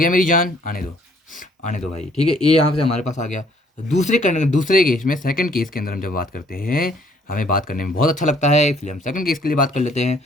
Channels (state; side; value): normal; both; correlation 0.62